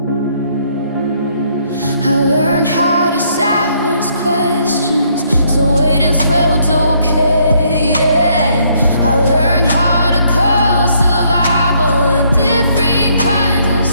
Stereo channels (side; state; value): both; inverted; correlation -0.69